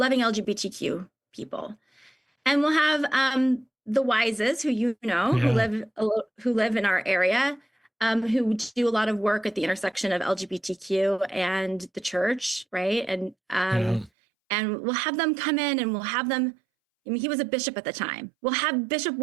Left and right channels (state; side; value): drops out; left; at 14.1 s